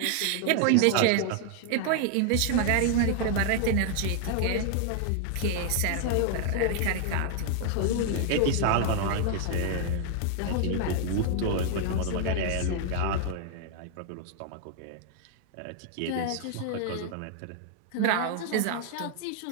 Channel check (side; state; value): both; different; correlation 0.00